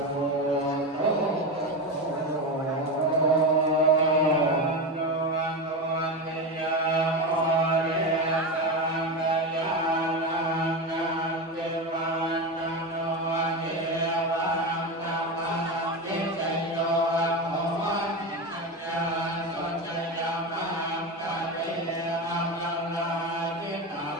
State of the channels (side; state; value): both; normal; correlation 0.18